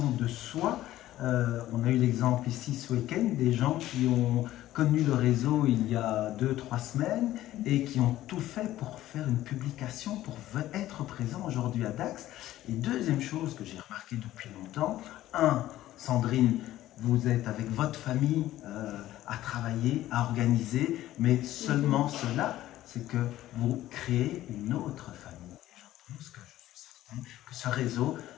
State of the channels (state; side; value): quieter; right; 14.4 dB